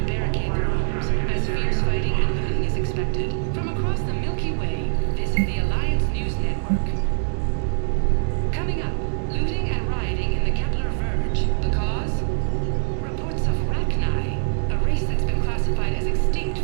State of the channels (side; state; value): left; silent; digital silence